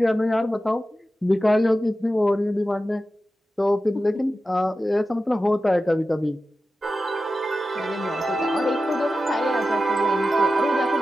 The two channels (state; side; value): normal; both; correlation 0.93